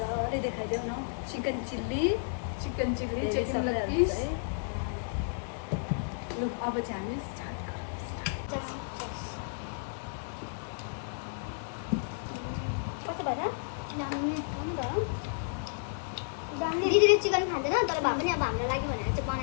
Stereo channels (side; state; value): right; silent; digital silence